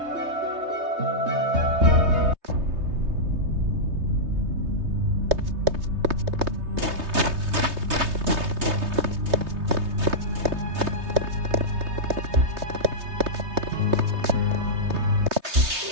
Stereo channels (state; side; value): late; left; 3.2 ms